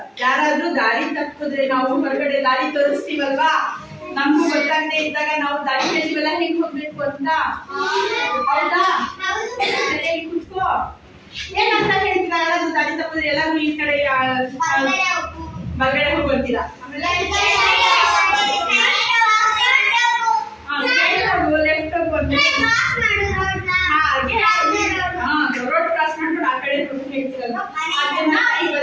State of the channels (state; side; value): identical; both; correlation 1.00